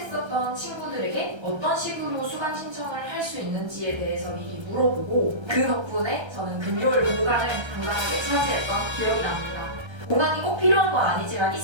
친구들에게 어떤 식으로 수강 신청을 할 수 있는지에 대해서 미리 물어보고 그 덕분에 저는 금요일 공강을 당당하게 차지했던 기억이 납니다. 공강이 꼭 필요한 건 아니지만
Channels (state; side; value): late; left; 1.3 ms